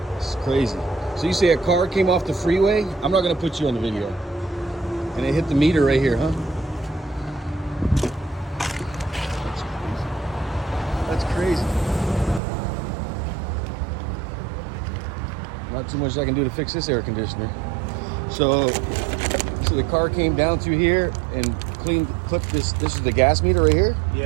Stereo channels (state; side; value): drops out; left; at 12.4 s